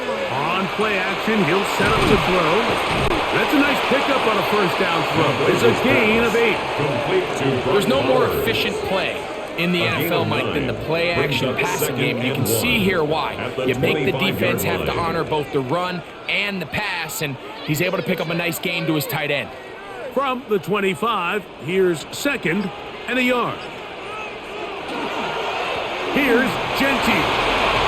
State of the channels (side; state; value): both; identical; correlation 1.00